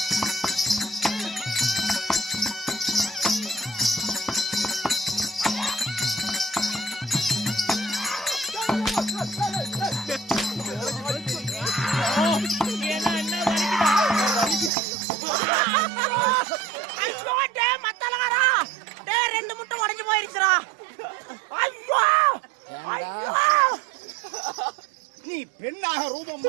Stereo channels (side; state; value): left; drops out; at 14.7 s